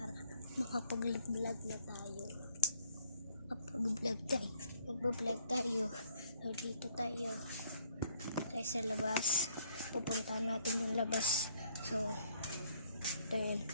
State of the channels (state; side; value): inverted; both; correlation -0.65